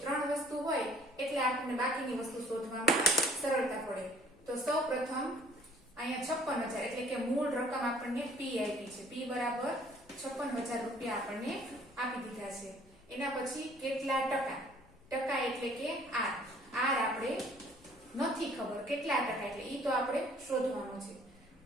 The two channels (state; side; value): noise; left; rumble, 27 dB below the sound